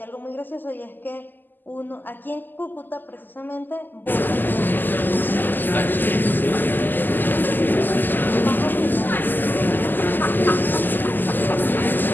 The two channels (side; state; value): right; late; 0.089 ms